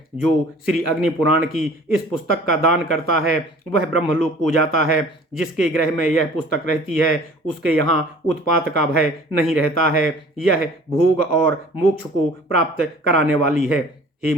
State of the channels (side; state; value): both; normal; correlation 0.49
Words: जो श्री अग्नि पुराण की इस पुस्तक का दान करता है, वह ब्रह्मलोक को जाता है। जिसके गृह में यह पुस्तक रहती है, उसके यहाँ उत्पात का भय नहीं रहता है। यह भोग और मोक्ष को प्राप्त कराने वाली है। हे